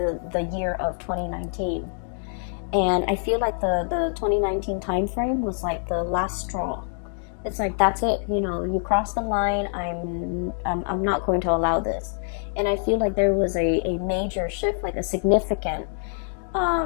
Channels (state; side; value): silent; right; digital silence